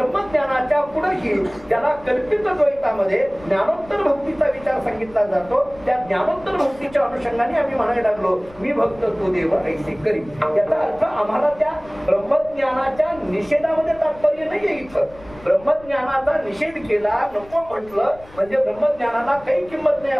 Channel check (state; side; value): noise; left; rumble, 22 dB below the sound